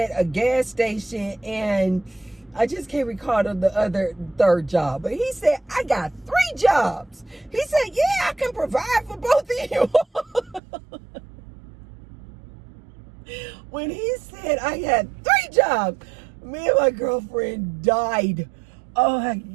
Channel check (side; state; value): left; drops out; at 10.6 s